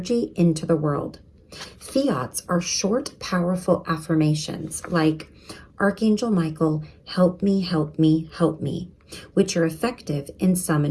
into the world. Fiats are short, powerful affirmations like, Archangel Michael, help me, help me, help me, which are effective in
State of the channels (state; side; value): identical; both; correlation 1.00